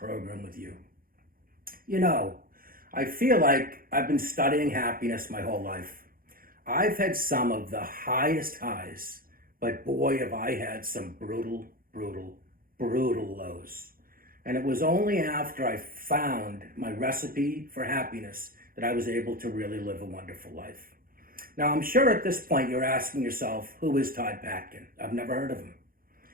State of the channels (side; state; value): left; late; 0.42 ms